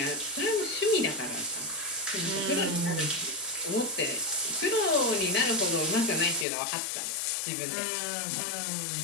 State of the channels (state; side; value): drops out; right; at 6.5 s